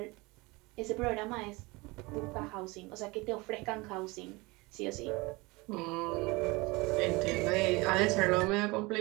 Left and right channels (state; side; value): quieter; left; 24.1 dB